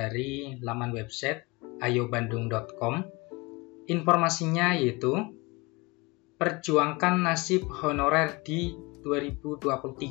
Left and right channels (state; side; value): quieter; right; 25.2 dB